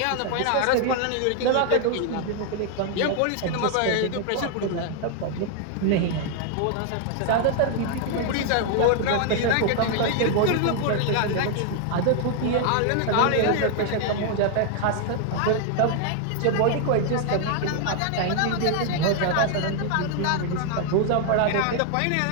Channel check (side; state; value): both; different; correlation 0.00